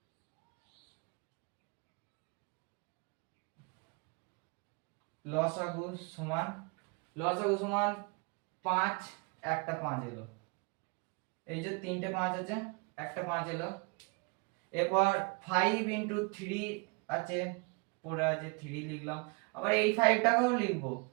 লসাগু সমান 5 একটা 5 এলো, এই যে তিনটে 5 আছে একটা 5 এলো। এরপর 5 ইনটু 3 আছে পড়ে আছে 3 লিখলাম, আবার এই 5টাকেও লিখবো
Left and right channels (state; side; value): quieter; left; 30.0 dB